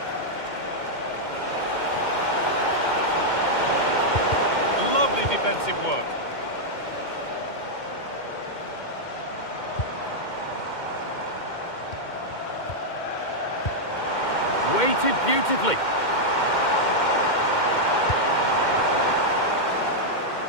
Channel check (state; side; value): late; right; 2.1 ms